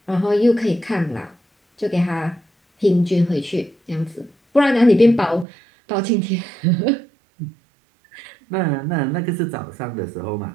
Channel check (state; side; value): drops out; left; at 5.5 s